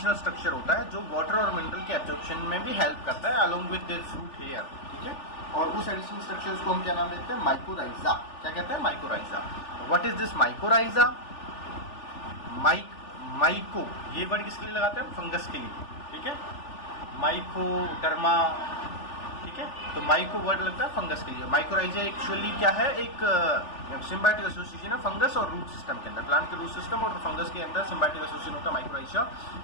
स्ट्रक्चर होता है जो वाटर और मिनरल के एब्जॉर्प्शन में भी हेल्प करता है along with this root hair. ठीक है, और उस एडिशनल स्ट्रक्चर्स को हम क्या नाम देते हैं? माइकोराइजा. क्या कहते हैं? Mycorrhiza. What is this mycorrhiza? Myco ये वर्ड किसके लिए लगाते हैं? फंगस के लिए. ठीक है, माइकोडर्मा. ठीक है, तो माइको वर्ड लगता है फंगस के लिए. माइकोराइजा एक्चुअली क्या है? एक सिम्बायोटिक एसोसिएशन है फंगस और रूट सिस्टम के अंदर. प्लांट के रूट सिस्टम और फंगस के अंदर सिम्बायोटिक एसोसिएशन होता है माइकोराइजा.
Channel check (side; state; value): right; late; 3.4 ms